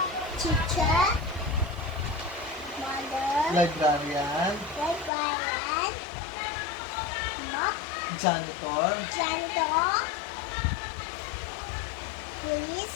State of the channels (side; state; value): right; drops out; at 5.1 s